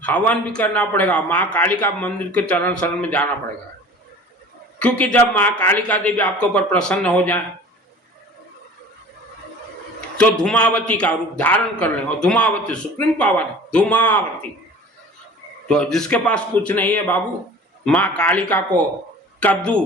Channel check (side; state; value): both; normal; correlation 0.43